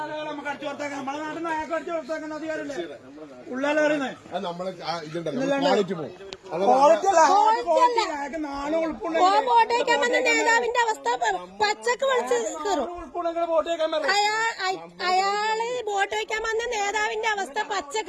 നമുക്ക് അടിച്ചു പുറത്താക്കാൻ, നമ്മളെ നാട്ടിൽ നിന്ന് അയാൾക്ക് അടിച്ചു പുറത്താക്കുന്ന അധികാരമില്ലേ ഉള്ളാലെ പറയുന്നത്? വോട്ടേക്കാൻ വന്ന നേതാവിന്റെ അവസ്ഥ പച്ചക്ക് വിളിച്ച് കയറും. അയാള് വോട്ട് വയ്ക്കാൻ വന്ന നേതാവിന്റെ അവസ്ഥ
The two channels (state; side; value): identical; both; correlation 1.00